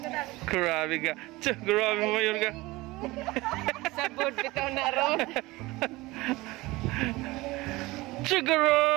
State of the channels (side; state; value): left; quieter; 20.8 dB